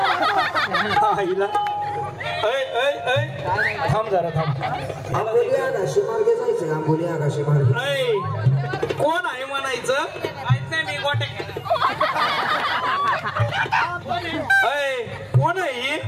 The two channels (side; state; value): both; identical; correlation 1.00